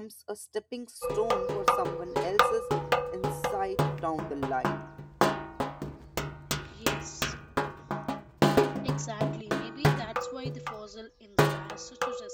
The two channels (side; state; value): both; identical; correlation 1.00